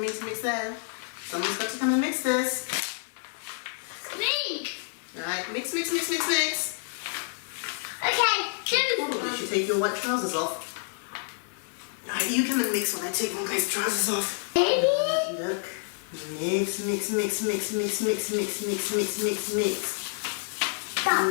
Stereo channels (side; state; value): right; silent; 59 dB below the other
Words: mix there. Someone's got to come and mix this. Me. Alright, mix, mix, mix, mix, mix. Okay, You should take your white trousers off. Alright, you come and mix while I take my guy's trousers off. Baby. Look. Mix, mix, mix, mix, mix, mix, mix, mix, mix, mix, mix.